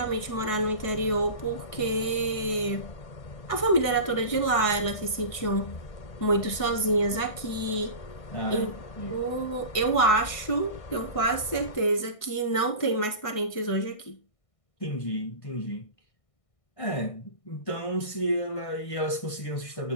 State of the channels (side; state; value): right; late; 1.6 ms